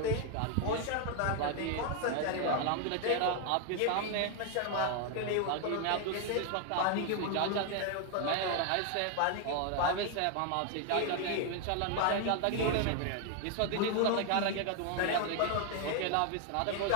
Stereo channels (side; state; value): both; different; correlation 0.00